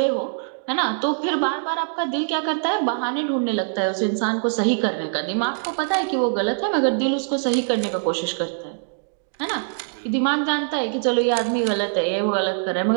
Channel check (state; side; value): silent; left; digital silence